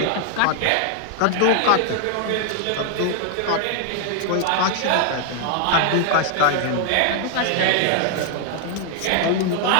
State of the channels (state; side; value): different; both; correlation 0.00